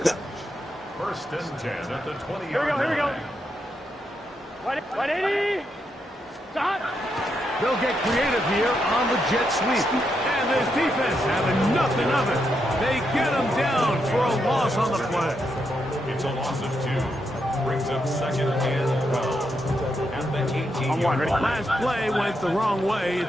1st and 10 at the 20-yard line. Here we go, here we go. 180. Stop. They'll get creative here on the jet sweep. And this defense having nothing of it. They get him down for a loss on the play. It's a loss of 2. Brings up 2nd and 12. At the 18-yard line. Last play went the wrong way.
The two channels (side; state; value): both; normal; correlation 0.82